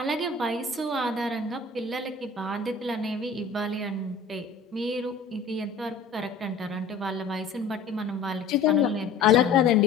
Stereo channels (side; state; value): right; quieter; 4.5 dB